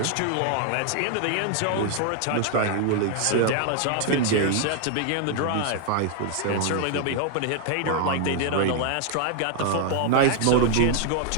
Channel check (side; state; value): both; different; correlation 0.00